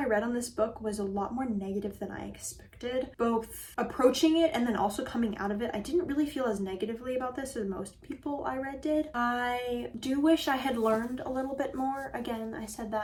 read on this book was a lot more negative than I expected. Both approaching it and then also coming out of it. I didn't really feel as negatively about this as most people I read did. I do wish I had learned a little bit more. Again, I said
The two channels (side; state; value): both; identical; correlation 1.00